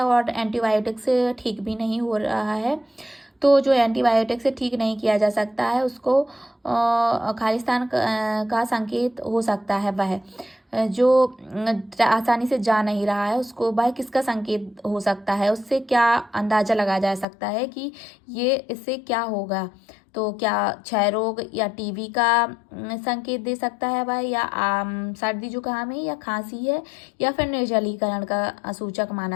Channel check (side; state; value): right; drops out; at 17.2 s